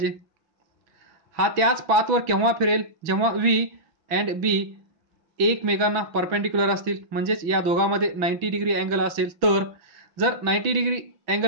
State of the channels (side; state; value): left; late; 6.0 ms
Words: हा त्याच पाथवर केव्हा फिरेल, जेव्हा व्ही अँड बी एकमेकांना परपेंडिक्युलर असतील, म्हणजेच या दोघांमध्ये 90 डिग्री अँगल असेल. तर जर 90 डिग्री